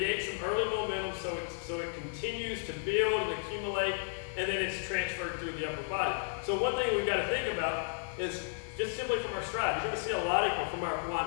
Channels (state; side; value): silent; right; digital silence